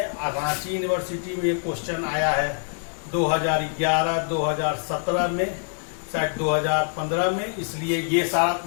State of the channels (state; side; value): silent; right; digital silence